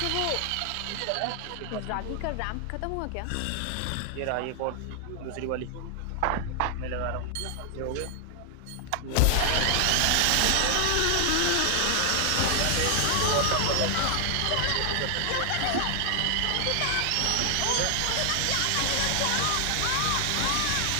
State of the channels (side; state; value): both; different; correlation 0.00